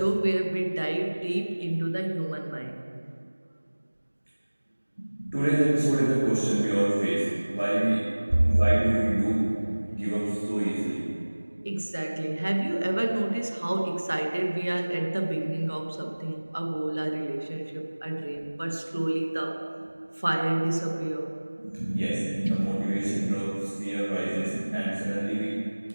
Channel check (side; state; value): both; inverted; correlation -1.00